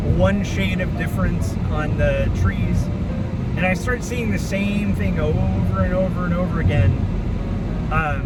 1 shade of difference on the trees, and I start seeing the same thing over and over and over again.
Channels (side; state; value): both; identical; correlation 1.00